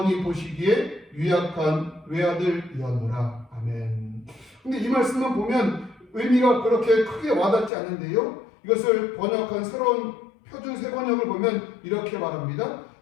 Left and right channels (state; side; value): drops out; right; at 7.7 s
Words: 보시기에 유약한 외아들이었노라. 아멘. 근데 이 말씀만 보면 의미가 그렇게 크게 와닿지 않는데요. 이것을 번역한 새로운 표준 세번역을 보면 이렇게 말합니다.